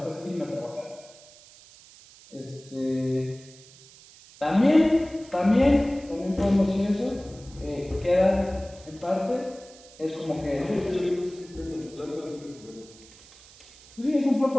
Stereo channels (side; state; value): right; noise; hiss, 22 dB below the sound